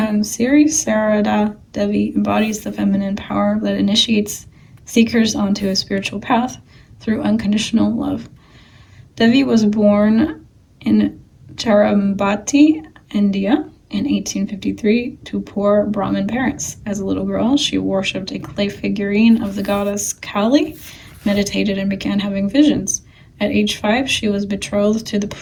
Siri Sarada Devi embodies the feminine power that initiates seekers onto a spiritual path through unconditional love. Devi was born in Cherambati, India, in 1853 to poor Brahmin parents. As a little girl, she worshipped a clay figurine of the goddess Kali, meditated, and began having visions. At age 5, she was betrothed to the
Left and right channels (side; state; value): both; identical; correlation 1.00